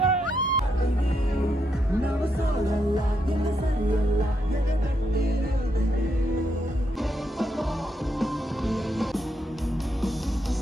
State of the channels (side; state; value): both; normal; correlation 0.80